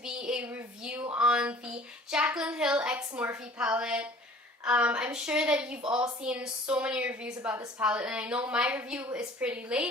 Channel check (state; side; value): normal; both; correlation 0.49